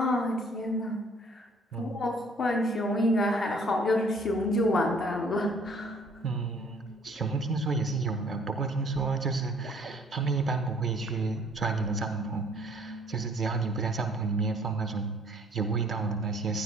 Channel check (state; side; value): normal; both; correlation 0.58